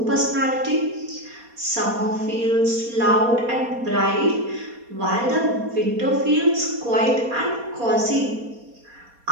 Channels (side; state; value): left; late; 4.2 ms